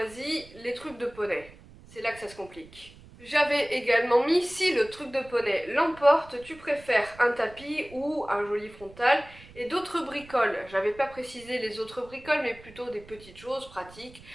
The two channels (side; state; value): right; noise; rumble, 21 dB below the sound